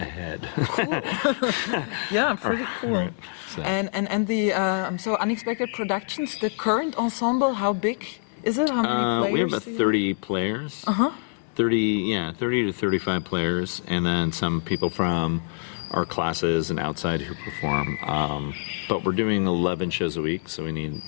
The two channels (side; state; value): right; silent; 61 dB below the other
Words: Cool. Yeah, pretty cool. Right. So. And the so Unexpected Productions, the current ensemble, how big is it? How many players? We have about 30 players. 30 to 35 players, and then some people from our classes and outside who perform. But we're doing 11 shows a week, so we need